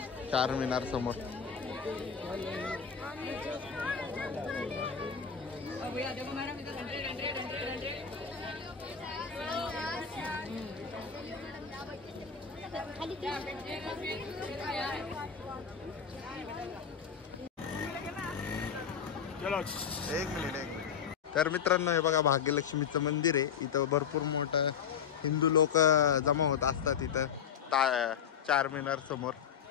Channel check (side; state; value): right; quieter; 7.2 dB